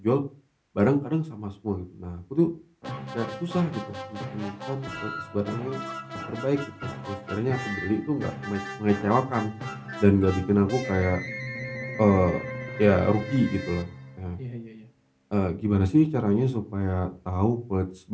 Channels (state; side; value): identical; both; correlation 1.00